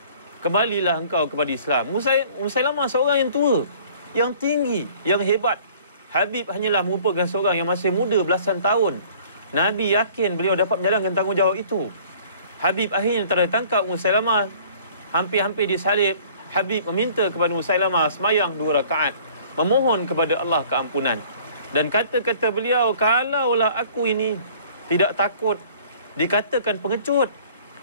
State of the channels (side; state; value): both; inverted; correlation -0.52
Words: kembalilah engkau kepada Islam." Musailamah seorang yang tua, yang tinggi, yang hebat. Habib hanyalah merupakan seorang yang masih muda belasan tahun. Nabi yakin beliau dapat menjalankan tanggungjawab itu. Habib akhirnya tertangkap Musailamah, hampir-hampir disalib. Habib meminta kepada Musailamah semayang 2 rakaat, memohon kepada Allah keampunan. Dan kata-kata beliau, kalaulah aku ini tidak takut dikatakan pengecut,